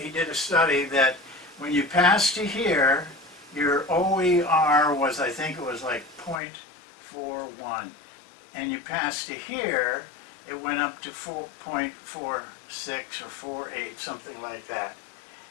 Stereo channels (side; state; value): right; drops out; at 6.4 s